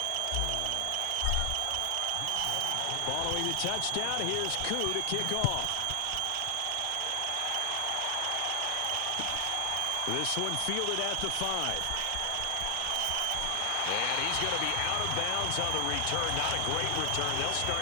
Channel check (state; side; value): different; both; correlation 0.00